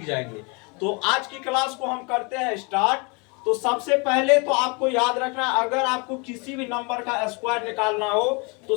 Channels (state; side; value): quieter; right; 31.0 dB